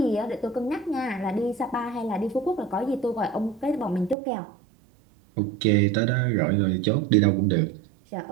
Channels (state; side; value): drops out; left; at 4.2 s